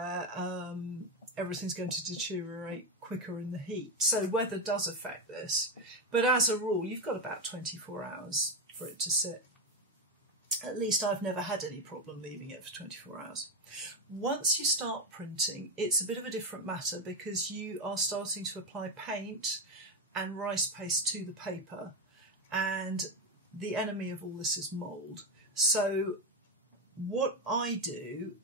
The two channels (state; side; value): normal; both; correlation 0.10